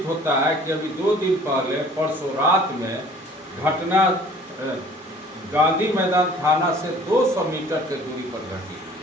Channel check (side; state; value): both; normal; correlation 0.51